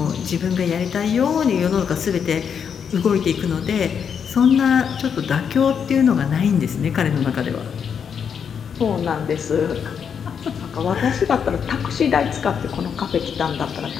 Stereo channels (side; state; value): right; quieter; 7.2 dB